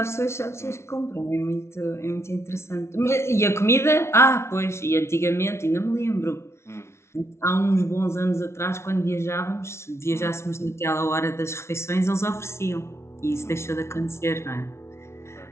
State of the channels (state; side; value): late; right; 0.13 ms